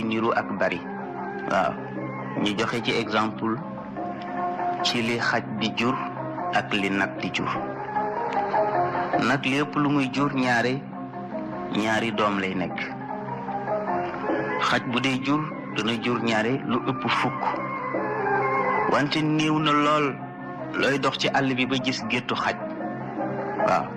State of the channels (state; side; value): identical; both; correlation 1.00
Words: niru ak bari. waaw ñu joxe ci exemple ci li xaj di jur ak li nag di jur. nag lépp lu muy jur ñaari doom lay nekk. xaj bu dee jur dana jur ñaare lu ëpp fukk wante néew na lool looy dox ci àll bi ba gis géttu xaj. waaw